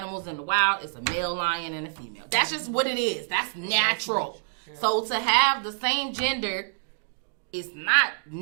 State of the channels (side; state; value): left; silent; digital silence